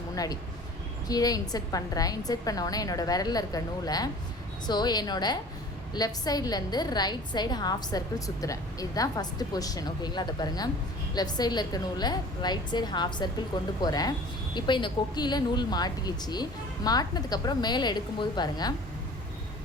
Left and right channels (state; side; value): normal; both; correlation 0.45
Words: முன்னாடி கீழே இன்சர்ட் பண்ணுறேன். இன்சர்ட் பண்ணோடனே என்னோடய விரலில் இருக்க நூலை என்னோடய லெஃப்ட் சைட்லேருந்து ரைட் சைடு ஹாஃப் சர்க்கிள் சுற்றுறேன். இதுதான் ஃபஸ்ட்டு பொசிஷன். ஓகேங்களா, அதை பாருங்கள், லெஃப்ட் சைடில் இருக்க நூலை ரைட் சைடு ஹாஃப் சர்க்கிள் கொண்டு போகிறேன். இப்போ இந்த கொக்கியில் நூல் மாட்டிக்கிச்சு. மாட்டினதுக்கப்புறம் மேலே எடுக்கும்போது பாருங்கள்,